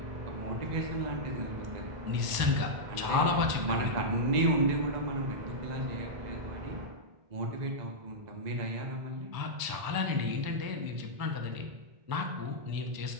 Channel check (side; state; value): left; late; 1.0 ms